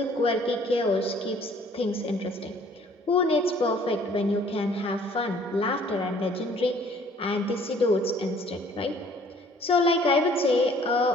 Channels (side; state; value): both; normal; correlation 0.57